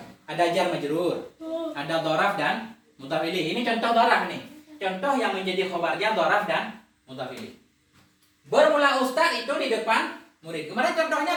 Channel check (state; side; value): identical; both; correlation 1.00